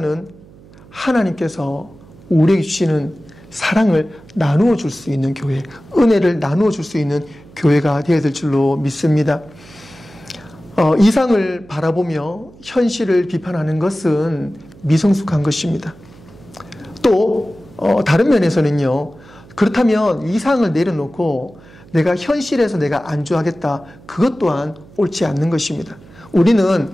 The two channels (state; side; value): noise; right; hum, 23 dB below the sound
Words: 하나님께서 우리에게 주시는 사랑을 나누어 줄 수 있는 교회, 은혜를 나누어 줄 수 있는 교회가 되어야 될 줄로 믿습니다. 이상을 바라보며 현실을 비판하는 것은 미성숙한 것입니다. 또 다른 면에서는요, 그렇다면 이상을 내려놓고 내가 현실에서 내가 안주하겠다, 그것 또한 옳지 않는 것입니다. 우리는